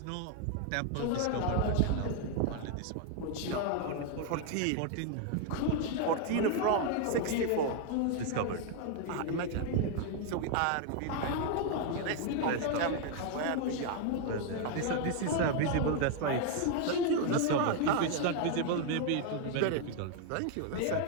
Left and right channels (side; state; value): both; different; correlation 0.00